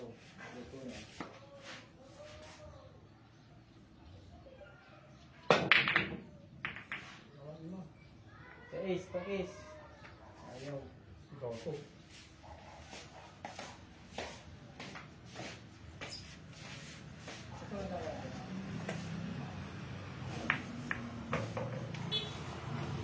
Pakis. Ayaw. Ikaw to.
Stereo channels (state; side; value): identical; both; correlation 1.00